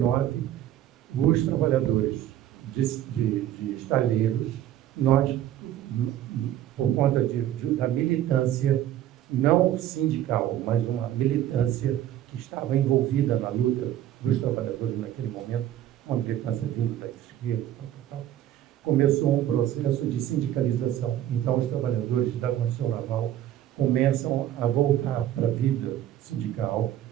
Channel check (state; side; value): quieter; left; 12.1 dB